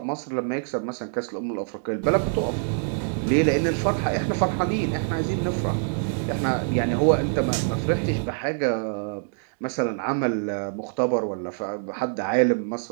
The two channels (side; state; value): left; silent; digital silence